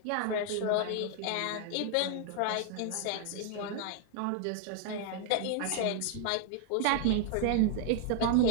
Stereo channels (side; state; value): both; different; correlation 0.00